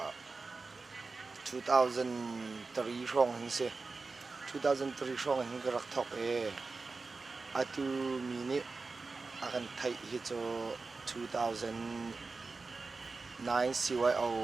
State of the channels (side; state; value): left; quieter; 4.0 dB